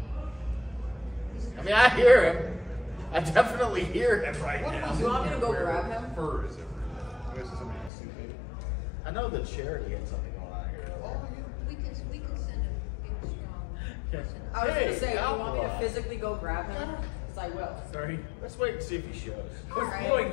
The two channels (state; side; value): drops out; right; at 7.9 s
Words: I mean, I hear him. I definitely hear him right now. Do you want me to go grab him? Fur is it? I guess it's somebody can sue me. I know that Charity had something going on here. We can send a big strong person. I was Hey, going to say, do you want me to Alkali. physically go grab him? Because I will. Sorry. Let's wait and see if he shows. It was going